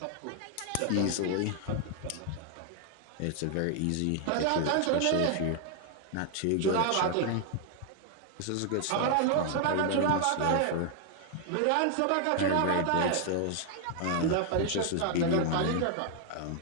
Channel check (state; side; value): different; both; correlation 0.00